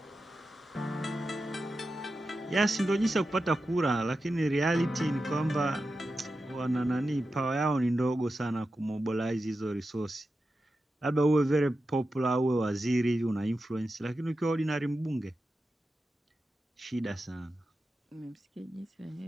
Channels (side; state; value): both; normal; correlation 0.91